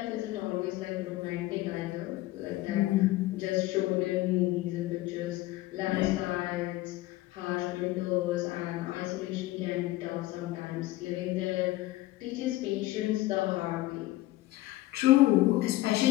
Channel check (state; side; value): quieter; right; 17.5 dB